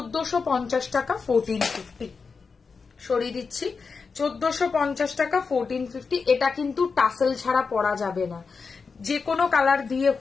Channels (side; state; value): right; quieter; 5.0 dB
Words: টাকা, 1450 সরিয়ে দিচ্ছি, 1450 টাকা, 1450। এটা কিন্তু টাসেল ছাড়া পরা যাবে না, যে কোনো কালার দিয়ে